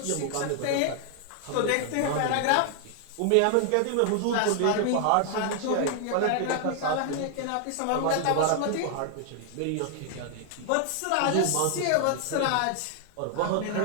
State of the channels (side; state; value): both; different; correlation 0.00